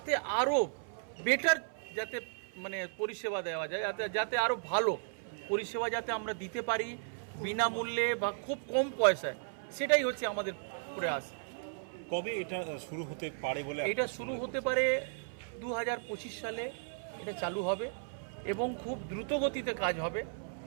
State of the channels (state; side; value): silent; left; 54 dB below the other